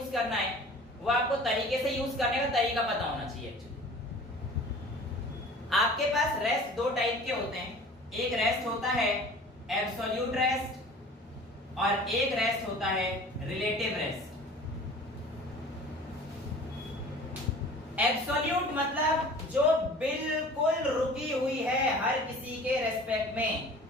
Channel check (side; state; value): both; normal; correlation 0.44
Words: करना है वो आपको तरीके से यूज करने का तरीका पता होना चाहिए। एक्चुअली आपके पास रेस्ट दो टाइप के होते हैं, एक रेस्ट होता है एब्सोल्यूट रेस्ट और एक रेस्ट होता है रिलेटिव रेस्ट। एब्सोल्यूट मतलब जो बिल्कुल रुकी हुई है हर किसी के रेस्पेक्ट में,